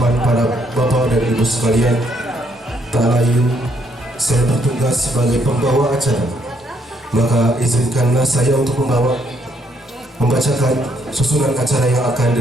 para bapak dan ibu sekalian, tak lain saya bertugas sebagai pembawa acara. Maka izinkanlah saya untuk membacakan susunan acara yang akan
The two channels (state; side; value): normal; both; correlation 0.71